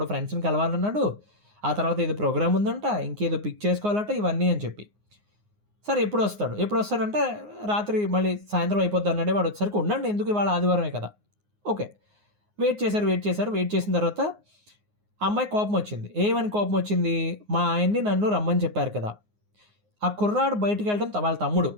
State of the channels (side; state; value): left; late; 9.6 ms